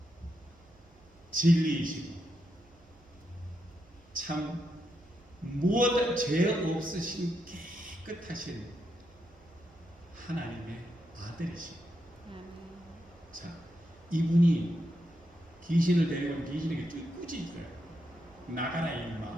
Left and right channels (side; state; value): right; noise; hum, 28 dB below the sound